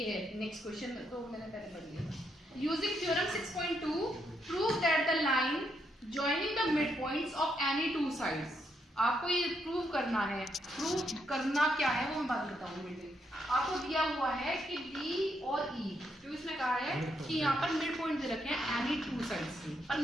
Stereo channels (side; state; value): both; normal; correlation 0.78